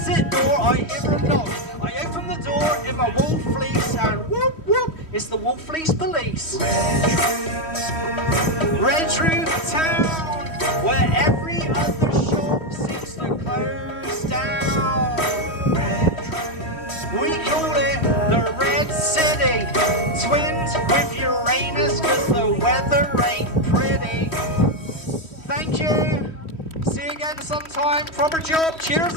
door I hear a knock. I open the door in my wool fleece and whoop whoop, it's the wool fleece police. Redruth Town, where every other shop seems to close down. We call it the Red City. Twins with Uranus, cause the weather ain't pretty. Thank you. See you again sometime. Proper job. Cheers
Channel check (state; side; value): late; right; 3.1 ms